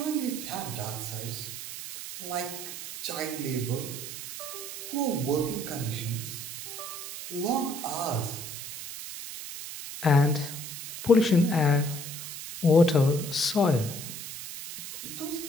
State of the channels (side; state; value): right; noise; hiss, 9 dB below the sound